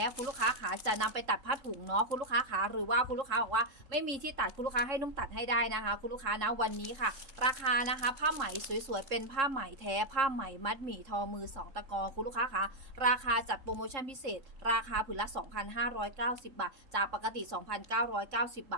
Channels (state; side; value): late; left; 3.7 ms